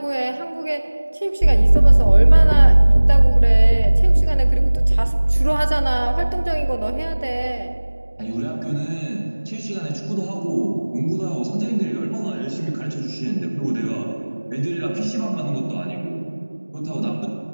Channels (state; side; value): inverted; both; correlation -1.00